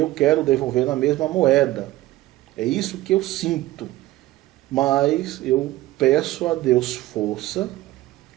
quero devolver na mesma moeda. É isso que eu sinto. Mas eu peço a Deus força,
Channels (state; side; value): quieter; left; 16.5 dB